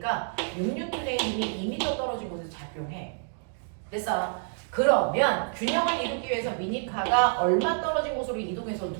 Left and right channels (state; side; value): silent; left; 59 dB below the other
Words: 6N의 힘이 2m 떨어진 곳에 작용해. 됐어? 그러면 균형을 이루기 위해서 미니카가 얼마 떨어진 곳으로 이동해서